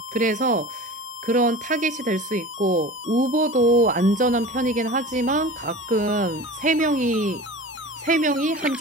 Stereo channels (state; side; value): normal; both; correlation 0.36